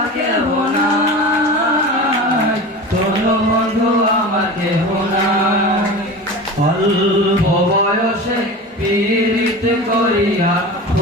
কেহ নাই, ধর বন্ধু আমার কেহ নাই। অল্প বয়সে পীড়িত করিয়া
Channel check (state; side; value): normal; both; correlation 0.32